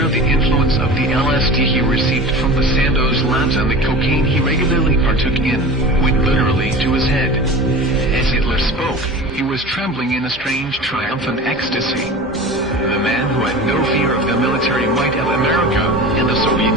the influence of the LSD he received from the Sandoz labs and the cocaine he regularly partook in, went literally to his head. As Hitler spoke, he was trembling in a strange triumphant ecstasy. The man who had no fear of the military might of America and the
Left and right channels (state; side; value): normal; both; correlation 0.34